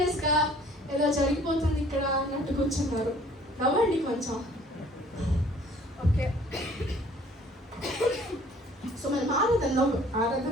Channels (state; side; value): normal; both; correlation 0.55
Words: ఏదో జరిగిపోతుంది ఇక్కడ అన్నట్టు కూర్చున్నారు. నవ్వండి కొంచెం. ఓకే, సో మనం